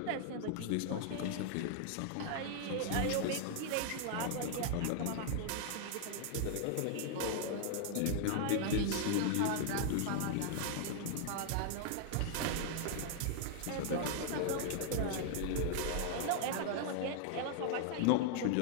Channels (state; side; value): different; both; correlation 0.00